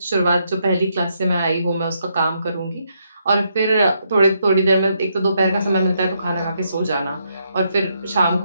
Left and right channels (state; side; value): inverted; both; correlation -0.77